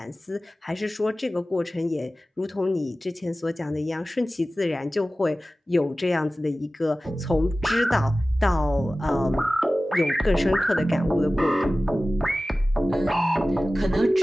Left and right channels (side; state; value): both; normal; correlation 0.96